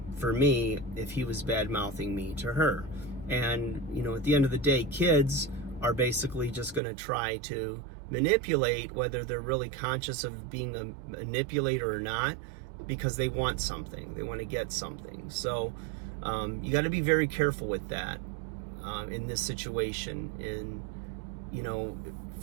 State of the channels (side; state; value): left; drops out; at 6.8 s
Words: for me if he was bad-mouthing me to her. And, at the end of the day, kids are basically just going to try to manipulate, whether they're really conscious of being a manipulator or not, because they want something. They want to get something. So you got to be very careful with that in this situation. And,